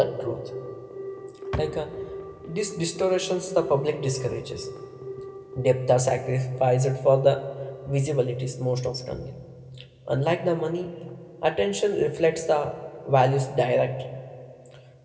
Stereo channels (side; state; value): both; identical; correlation 1.00